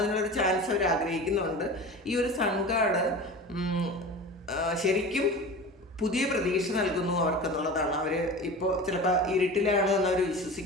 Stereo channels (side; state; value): both; normal; correlation 0.34